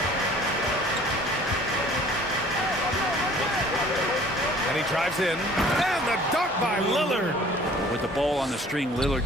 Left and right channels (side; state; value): both; normal; correlation 0.51